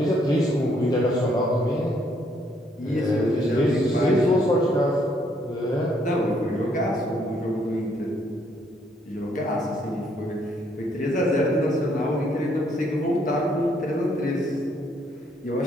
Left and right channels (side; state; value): both; normal; correlation 0.69